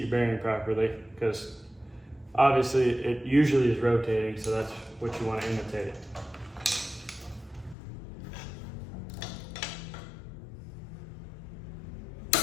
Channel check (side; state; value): right; drops out; at 7.8 s